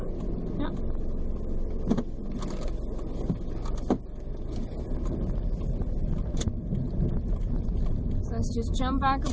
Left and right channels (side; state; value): both; identical; correlation 1.00